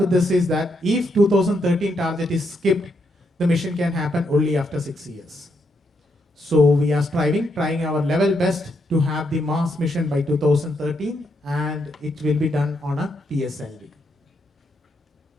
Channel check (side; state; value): both; normal; correlation 0.78